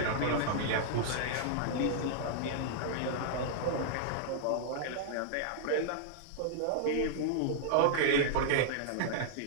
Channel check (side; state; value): both; different; correlation -0.01